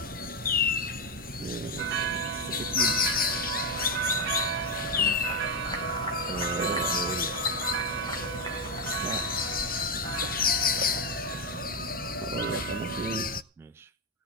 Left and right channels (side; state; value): both; normal; correlation 0.05